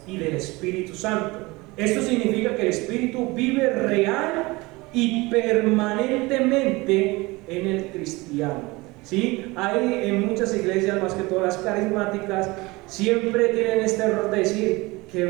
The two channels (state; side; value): quieter; left; 22.9 dB